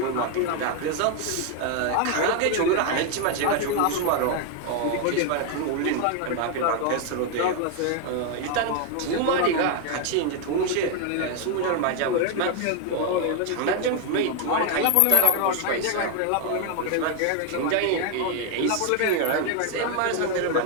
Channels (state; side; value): different; both; correlation 0.01